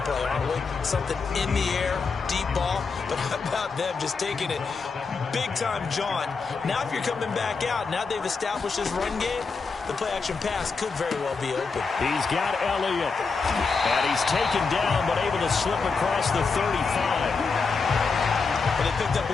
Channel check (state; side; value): quieter; right; 4.7 dB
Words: play, aren't we? Something in the air, deep ball. But how about them just taking it big time, John? Now if you're coming back out, now they've established this run game, the play-action pass could very well be open. He's got Elliott. And he's taken down, but able to slip across the 35. And they picked up a